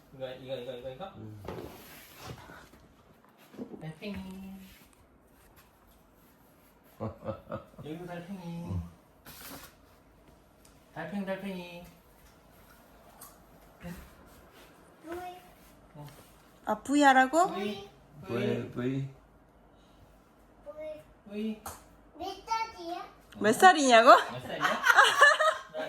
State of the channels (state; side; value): identical; both; correlation 1.00